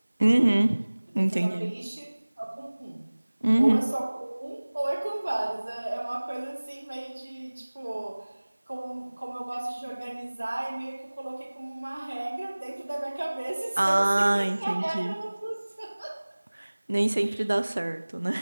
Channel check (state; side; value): inverted; both; correlation -1.00